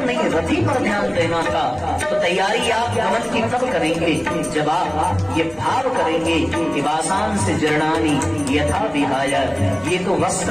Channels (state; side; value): noise; left; hum, 28 dB below the sound